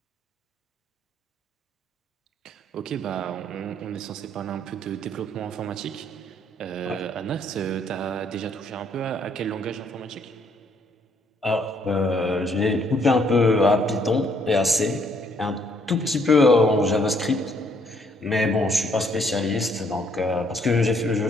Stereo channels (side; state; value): both; normal; correlation 0.68